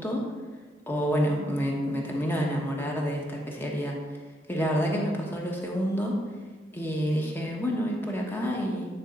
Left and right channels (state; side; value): normal; both; correlation 0.77